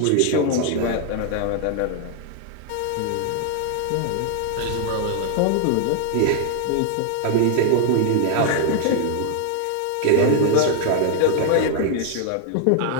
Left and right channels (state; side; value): different; both; correlation 0.00